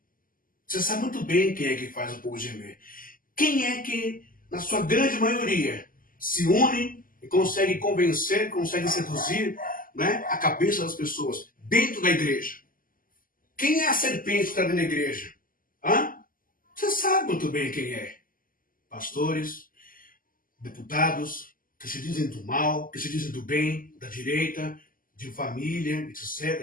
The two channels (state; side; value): late; right; 0.41 ms